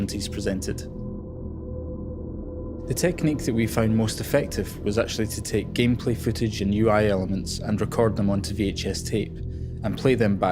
presented. The technique that we found most effective was actually to take gameplay footage and UI elements and record them onto VHS tape and play them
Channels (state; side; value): identical; both; correlation 1.00